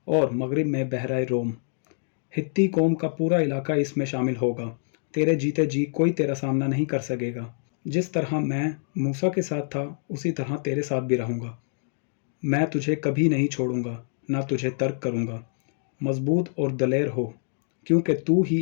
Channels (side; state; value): right; silent; digital silence